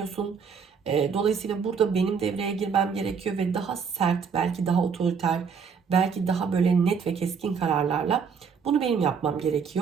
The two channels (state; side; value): quieter; left; 6.1 dB